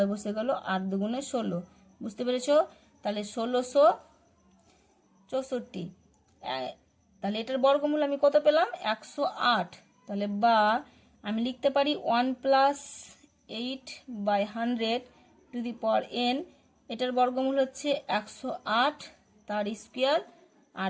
বসে গেল, 8 দুগুণে 16, বুঝতে পেরেছো। তাহলে 1664, তাহলে এটার বর্গমূল আমি কত পেলাম? 108। তাহলে বা আমি লিখতে পারি 1 + 8/100 টু দি পাওয়ার n, এটার বর্গমূল হচ্ছে 108 তার স্কোয়ার। আর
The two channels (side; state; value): both; identical; correlation 1.00